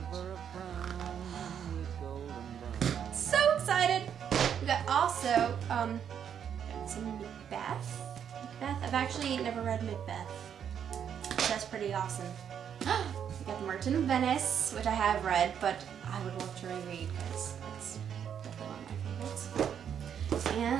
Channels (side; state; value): left; quieter; 8.4 dB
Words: page. So excited. We got also got some Macbeth. I've actually never read Macbeth. So that's pretty awesome. We got The Merchant of Venice, which I have read, but I would love to reread because it's definitely one of my favorites.